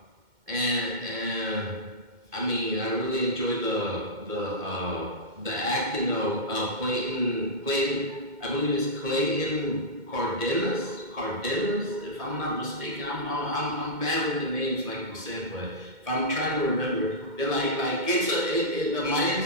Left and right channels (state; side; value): late; left; 2.1 ms